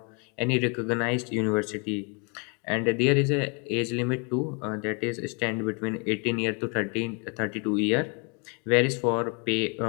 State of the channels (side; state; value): right; quieter; 34.5 dB